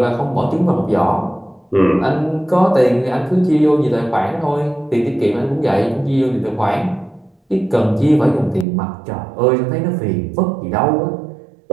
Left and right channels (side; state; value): left; drops out; at 8.7 s